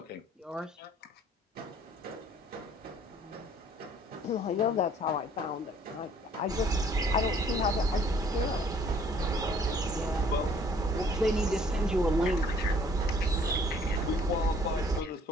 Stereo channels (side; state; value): both; normal; correlation 0.58